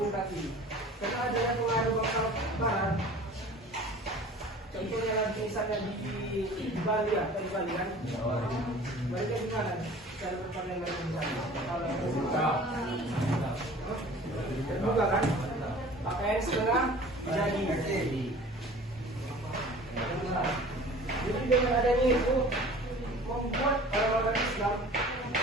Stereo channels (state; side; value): normal; both; correlation 0.45